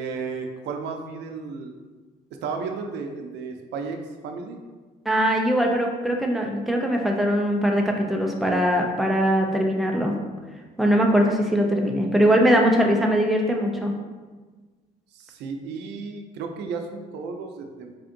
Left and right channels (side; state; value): both; normal; correlation 0.71